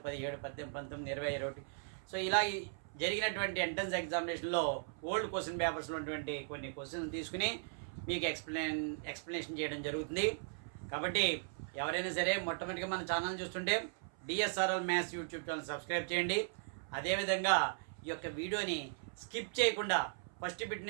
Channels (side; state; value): left; silent; 53 dB below the other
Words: 17, 18, 19, 20, 21 సో ఇలా జరిగినటువంటి ఎంట్రన్స్ ఎగ్జామినేషన్లో ఓల్డ్ క్వశ్చన్ పేపర్స్లో ఉన్నటువంటి కొన్ని క్వశ్చన్స్ తీసుకుని మీకు ఎక్స్ప్లెనేషన్ చేయడం జరుగుతుంది. కాబట్టి ఎవరైనా సరే మొట్టమొదటిగా మన ఛానల్ చూస్తుంటే DSRL maths YouTube channel subscribe చేయండి. అదేవిధంగా ఈ యొక్క వీడియోని స్కిప్ చేయకుండా ఫస్ట్ బిట్